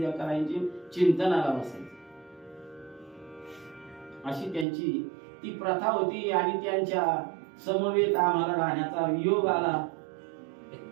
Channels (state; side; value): drops out; left; at 4.7 s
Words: करायची, चिंतनाला बसायचं. अशी त्यांची ती प्रथा होती. आणि त्यांच्या समवेत आम्हाला राहण्याचा योग आला.